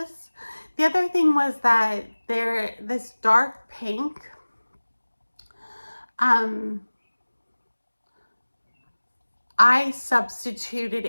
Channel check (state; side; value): inverted; both; correlation -1.00